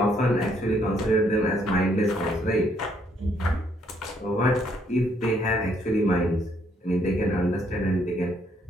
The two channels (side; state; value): both; normal; correlation 0.69